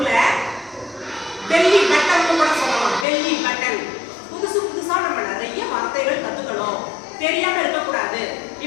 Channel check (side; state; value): right; drops out; at 3.1 s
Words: பெல்லி பட்டன் கூட சொல்லலாம், பெல்லி பட்டன். புதுசு புதுசா நம்ம நிறைய வார்த்தைகள் கத்துக்கணும், தெரியாம இருக்கக்கூடாது.